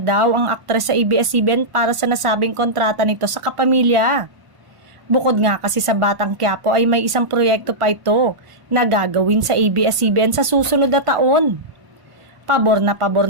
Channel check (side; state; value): left; late; 1.5 ms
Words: ang aktres sa ABS-CBN para sa nasabing kontrata nito sa kapamilya. Bukod nga kasi sa Batang Quiapo ay may isang proyekto pa ito na gagawin sa ABS-CBN sa susunod na taon. Pabor